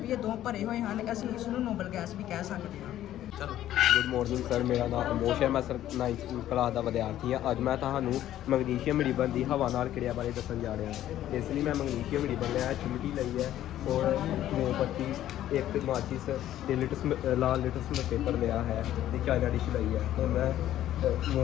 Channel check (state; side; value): quieter; right; 12.6 dB